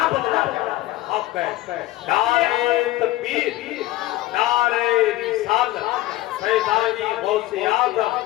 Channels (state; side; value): quieter; right; 16.8 dB